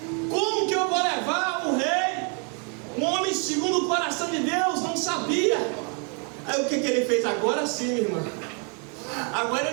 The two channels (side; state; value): left; quieter; 38.7 dB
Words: Como que eu vou levar o rei? Um homem segundo o coração de Deus, não sabia. Aí o que ele fez? Agora sim, minha irmã. Agora